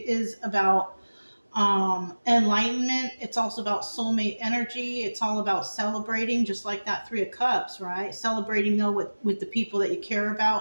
about enlightenment. It's also about soulmate energy. It's all about celebrating, just like that Three of Cups, right? Celebrating though with the people that you care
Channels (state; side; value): inverted; both; correlation -1.00